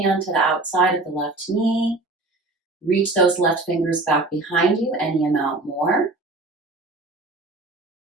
to the outside of the left knee. Reach those left fingers back behind you, any amount more.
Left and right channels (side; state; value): left; quieter; 3.0 dB